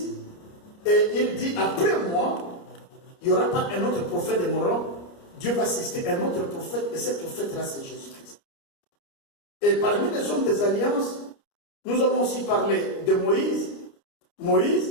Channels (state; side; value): late; right; 29 ms